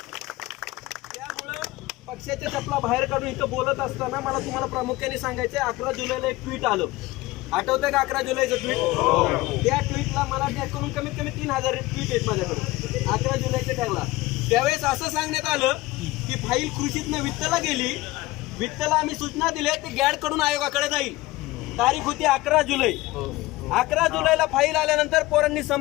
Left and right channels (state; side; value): quieter; right; 19.4 dB